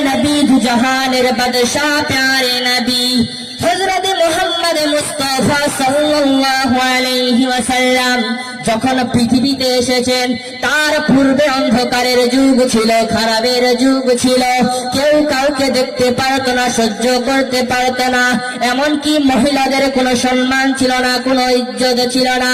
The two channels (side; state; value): both; identical; correlation 1.00